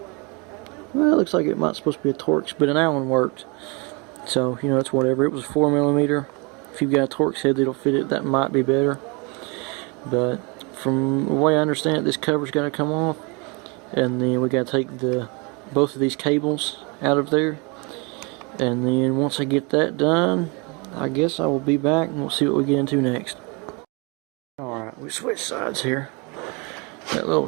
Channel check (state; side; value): quieter; left; 30.5 dB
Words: Well, it looks like it might supposed to be a Torx, but an Allen worked. So, you know, it's whatever. It was 4mm. If you've got a Torx head that'll fit it, that might be better. But from the way I understand it, this cover's got to come off. And then we got to take both of these cables out of there. And then once I get that done, I guess I will be back and we'll see what we get into next. we switch sides here. That little